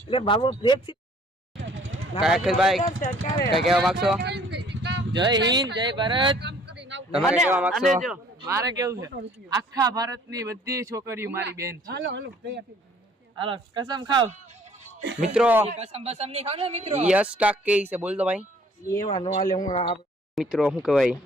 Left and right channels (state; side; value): normal; both; correlation 0.57